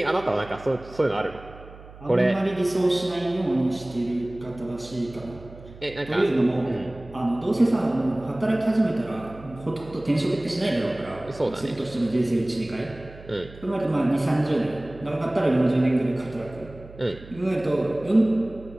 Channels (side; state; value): right; noise; hum, 18 dB below the sound